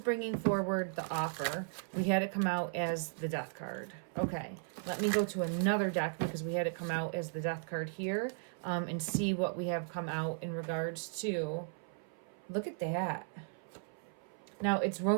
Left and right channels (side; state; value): left; silent; 54 dB below the other